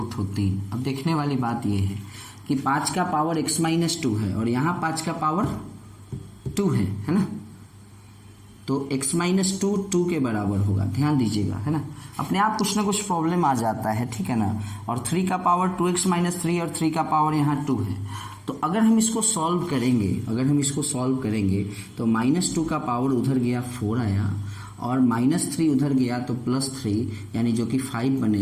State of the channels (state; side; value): identical; both; correlation 1.00